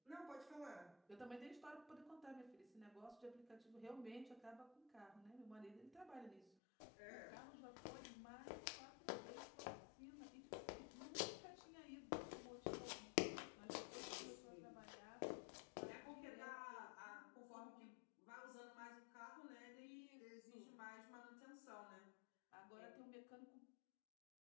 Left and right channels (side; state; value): right; drops out; at 6.5 s